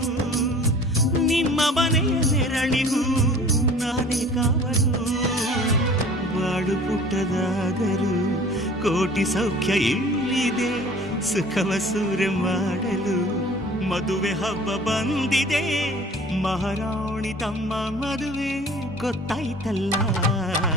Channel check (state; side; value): normal; both; correlation 0.47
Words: ನಿಮ್ಮ ಮನೆಯ ನೆರಳಿಗೂ ನಾನೇ ಕಾವಲು ಬಾಳು ಪುಟ್ಟದಾದರೂ ಕೋಟಿ ಸೌಖ್ಯ ಇಲ್ಲಿದೆ ಸುಖವ ಸೂರೆ ಮಾಡಲು ಮದುವೆ ಹಬ್ಬ ಬಂದಿದೆ. ಮಹಾರಾಣಿ ತಮ್ಮ ಮದುವೆ ಗೊತ್ತಾಯ್ತಲ್ಲ.